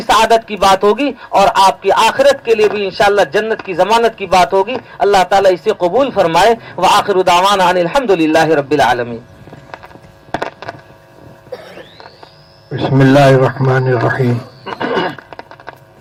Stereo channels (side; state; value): both; identical; correlation 1.00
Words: सआदत की बात होगी और आपकी आखिरत के लिए भी इंशाअल्लाह जन्नत की जमानत की बात होगी। अल्लाह ताला इसे कबूल फरमाए। व आखिरु दावाना अनिल हम्दुलिल्लाहि रब्बिल आलमीन। बिस्मिल्लाहिर्रहमानिर्रहीम।